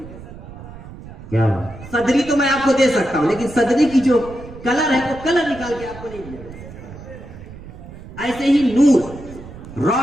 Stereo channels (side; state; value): right; noise; rumble, 15 dB below the sound